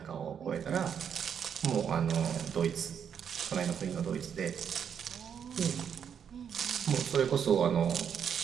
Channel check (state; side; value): quieter; left; 7.9 dB